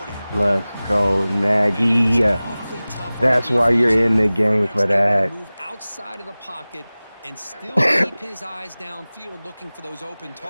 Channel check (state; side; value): inverted; both; correlation -0.98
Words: Let's go, Nagy. That's why you're in the game for that. Move outside of the pocket and still keep his eyes downfield looking for those open